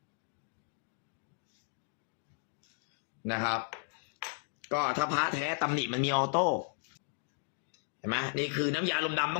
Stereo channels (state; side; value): silent; right; digital silence